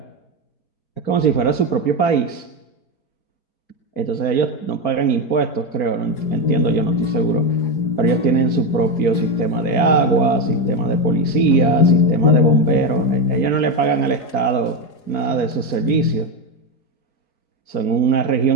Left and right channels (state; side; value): late; right; 4.8 ms